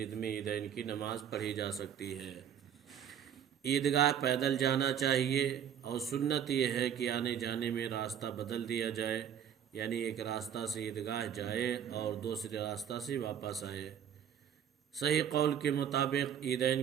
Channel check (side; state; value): left; quieter; 9.0 dB